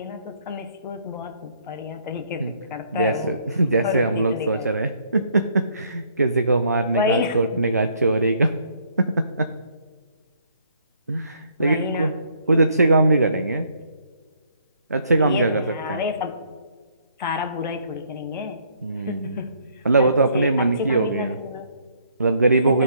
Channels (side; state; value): both; inverted; correlation -0.66